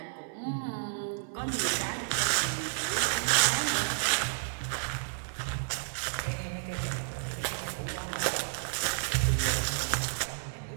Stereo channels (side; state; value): left; silent; 57 dB below the other